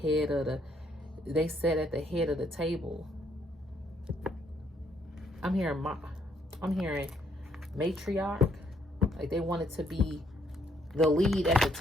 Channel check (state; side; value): normal; both; correlation 0.70